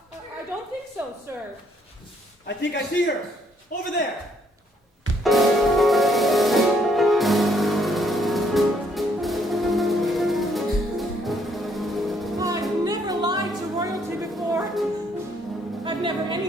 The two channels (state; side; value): normal; both; correlation 0.69